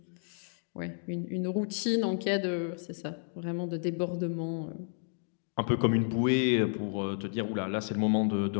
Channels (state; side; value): silent; right; digital silence